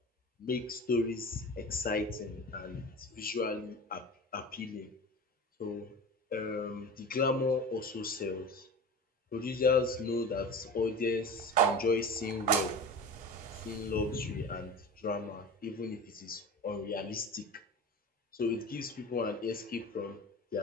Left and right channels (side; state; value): both; normal; correlation 0.33